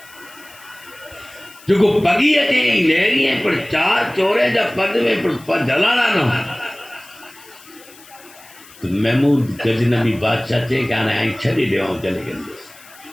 जो पगी अचे लहरी है पर चार चोरे जा पग में पर जलाना न। तो महमूद गजनबी बादशाह चई कि हाणे आई छॾे ॾियो जले कंदुसि।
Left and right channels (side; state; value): left; noise; hiss, 22 dB below the sound